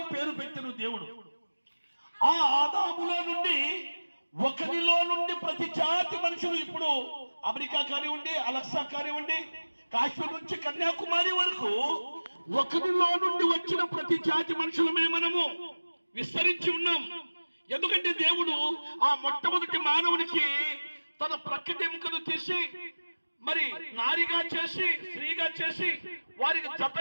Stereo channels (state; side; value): inverted; both; correlation -1.00